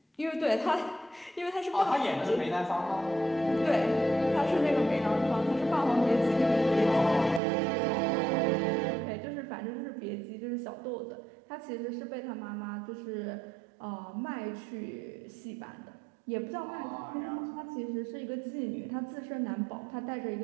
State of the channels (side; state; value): left; drops out; at 7.4 s